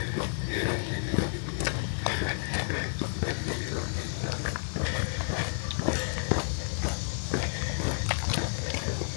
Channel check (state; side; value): silent; right; digital silence